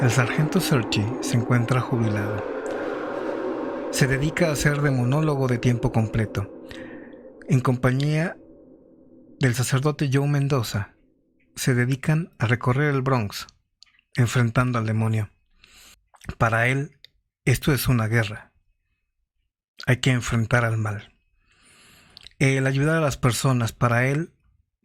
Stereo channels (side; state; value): both; identical; correlation 1.00